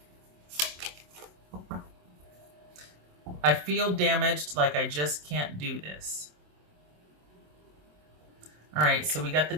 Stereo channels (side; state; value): left; late; 27 ms